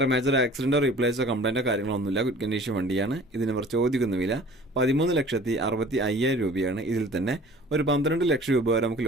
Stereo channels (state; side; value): normal; both; correlation 0.47